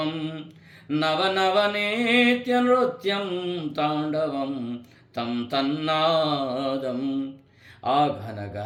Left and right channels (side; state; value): both; identical; correlation 1.00